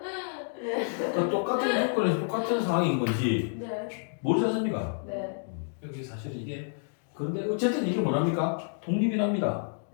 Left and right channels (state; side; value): silent; right; digital silence